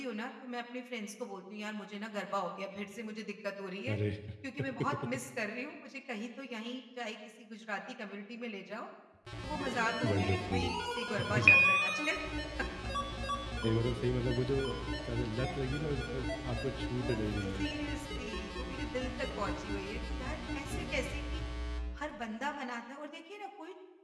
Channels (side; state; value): both; identical; correlation 1.00